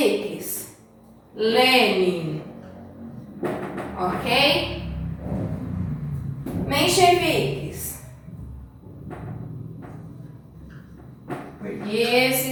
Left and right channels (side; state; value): both; identical; correlation 1.00